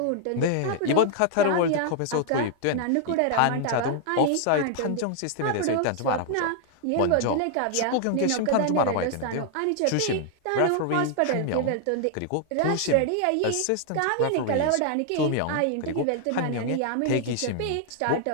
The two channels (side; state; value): both; different; correlation 0.00